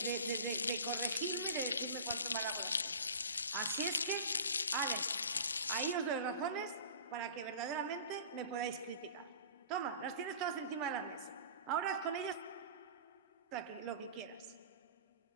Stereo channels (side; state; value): both; inverted; correlation -0.40